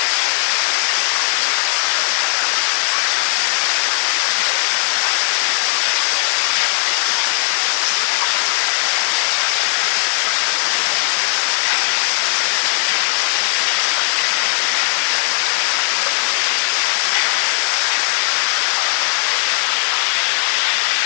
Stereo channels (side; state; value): right; silent; digital silence